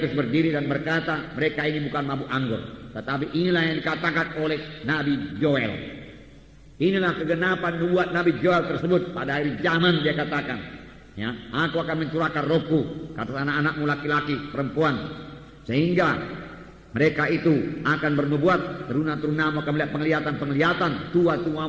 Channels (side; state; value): both; identical; correlation 1.00